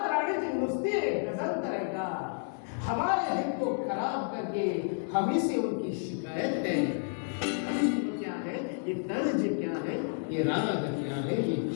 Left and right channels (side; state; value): right; silent; digital silence